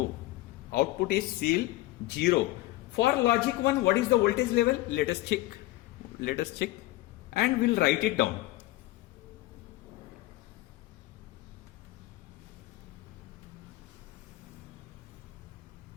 Output is still 0. For logic 1, what is the voltage level? Let us check. Let us check. And we'll write it down.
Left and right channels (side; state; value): right; quieter; 17.7 dB